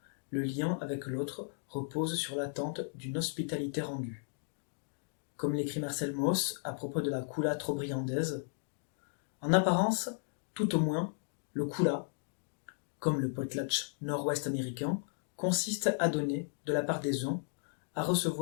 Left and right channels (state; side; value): silent; right; digital silence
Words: le lien avec l'autre repose sur l'attente d'une hospitalité rendue. Comme l'écrit Marcel Mauss à propos de la kula trobriandaise, en apparence, tout au moins, le kula, comme le potlatch nord-ouest américain, consiste à donner de la part des uns, à